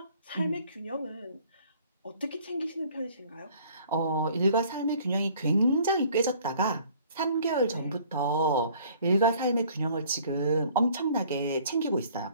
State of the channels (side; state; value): both; inverted; correlation -0.55